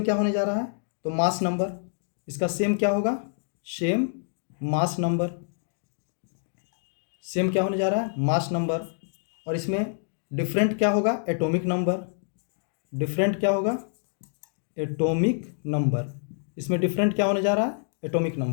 क्या होने जा रहा है, तो मास नंबर, इसका सेम क्या होगा, सेम मास नंबर। सेम क्या होने जा रहा है, मास नंबर। और इसमें डिफरेंट क्या होगा, एटॉमिक नंबर। डिफरेंट क्या होगा, एटॉमिक नंबर। इसमें डिफरेंट क्या होने जा रहा है, एटॉमिक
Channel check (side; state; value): right; silent; digital silence